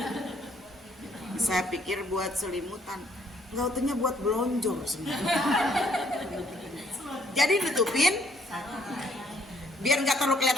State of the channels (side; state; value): both; normal; correlation 0.66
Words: Saya pikir buat selimutan, nggak utuhnya buat belonjor semua. Jadi ditutupin biar nggak terlalu